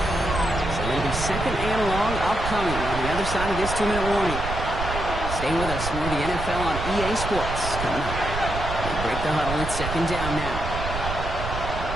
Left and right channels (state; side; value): noise; right; rumble, 6 dB below the sound